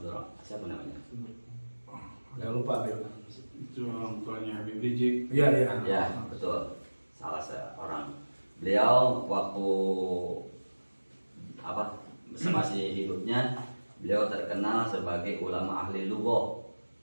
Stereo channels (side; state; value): both; inverted; correlation -1.00